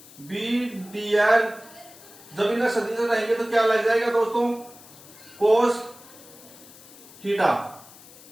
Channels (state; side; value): noise; left; hiss, 21 dB below the sound